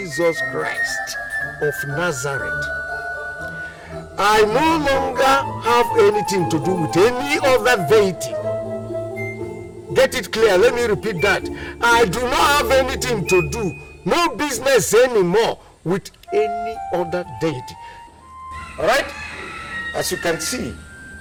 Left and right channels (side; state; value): both; identical; correlation 1.00